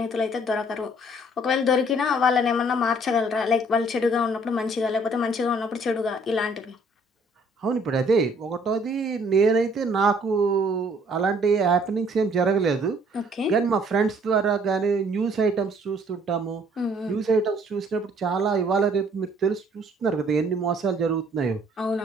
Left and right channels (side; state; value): both; normal; correlation 0.60